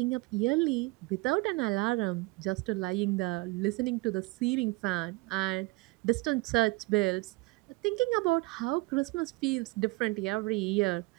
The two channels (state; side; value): quieter; left; 24.1 dB